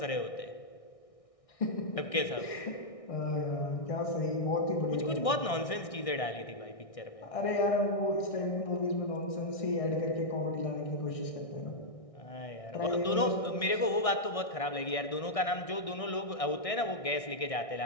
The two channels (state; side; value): late; right; 1.6 ms